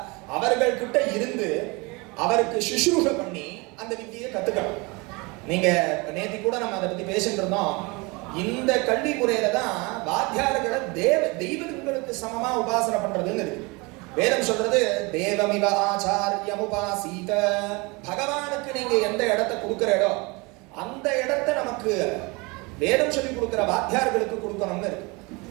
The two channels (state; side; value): quieter; left; 26.9 dB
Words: அவர்கள் கிட்ட இருந்து அவருக்கு சுஷ்ரூஷ பண்ணி அந்த வித்தியை கத்துக்கணும். நீங்க நேத்தி கூட நம்ம அதை பத்தி பேசிட்டு இருந்தோம். இந்த கல்வி முறையில தான் வாத்தியார்களை தெய்வங்களுக்கு சமமா உபாசனை பண்றதுன்னு இருக்கு. வேதம் சொல்றது தேவமிவ ஆச்சாரியம் உபாசீத. பகவானுக்கு நீங்க எந்த இடத்தை கொடுக்கிற இடம், அந்த இடத்தை நமக்கு வேதம் சொல்லி கொடுக்கிற வாத்தியார்களுக்கு கொடுக்கணும்னு இருக்கு.